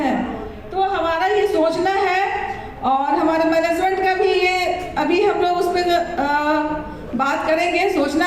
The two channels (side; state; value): both; identical; correlation 1.00